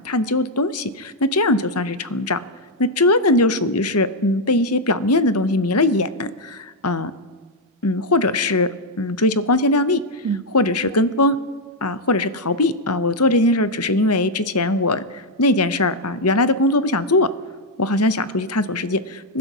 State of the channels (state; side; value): normal; both; correlation 0.01